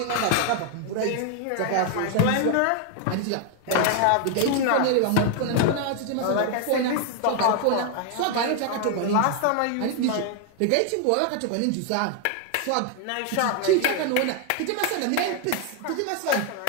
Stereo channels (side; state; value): both; different; correlation 0.00